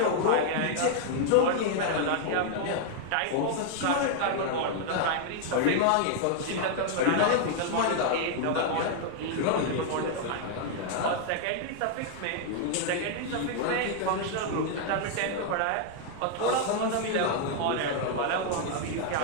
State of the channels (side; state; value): both; different; correlation 0.00